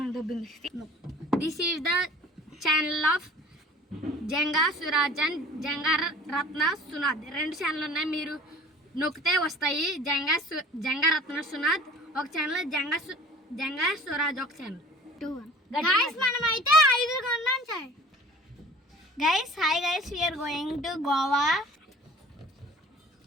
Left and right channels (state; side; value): normal; both; correlation 0.46